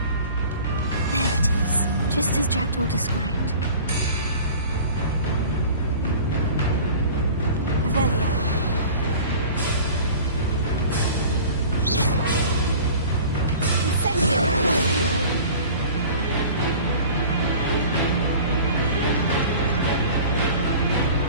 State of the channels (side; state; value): both; inverted; correlation -0.42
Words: There it is, just as Jackdaw described. Revelio. Incendio.